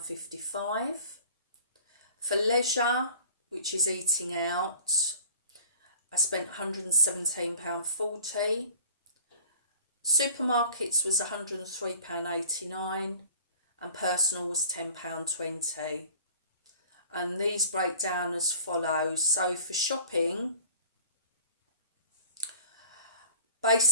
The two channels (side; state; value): both; inverted; correlation -0.47